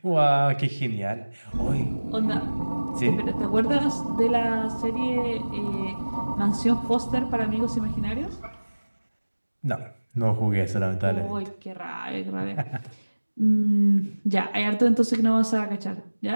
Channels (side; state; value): both; inverted; correlation -1.00